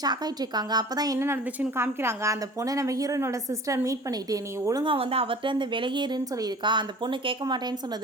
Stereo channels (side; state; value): both; normal; correlation 0.44